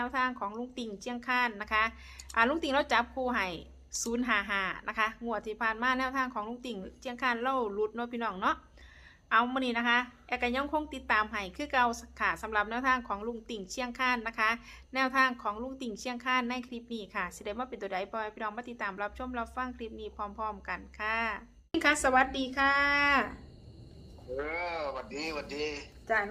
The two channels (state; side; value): identical; both; correlation 1.00